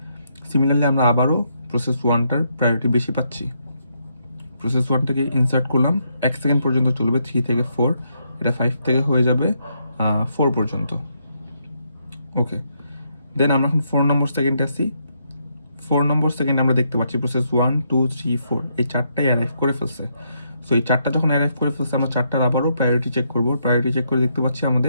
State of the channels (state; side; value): inverted; both; correlation -0.77